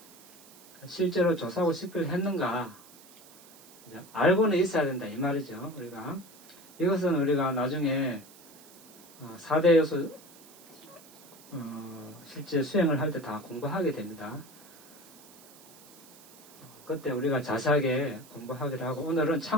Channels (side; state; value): right; noise; hiss, 22 dB below the sound